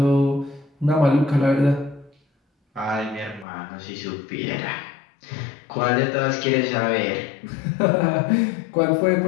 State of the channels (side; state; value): right; drops out; at 3.5 s